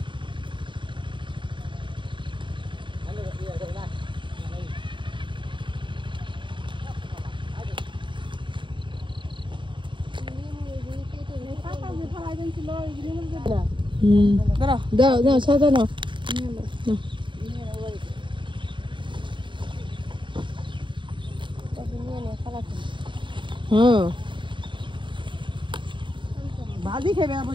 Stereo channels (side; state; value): left; late; 0.23 ms